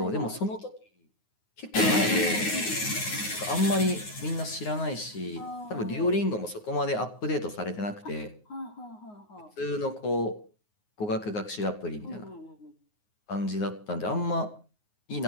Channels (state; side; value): late; right; 9.5 ms